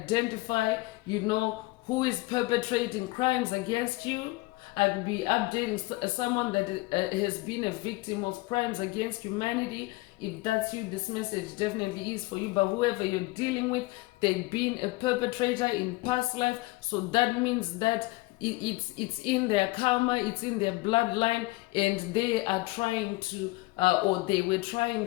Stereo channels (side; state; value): right; quieter; 21.9 dB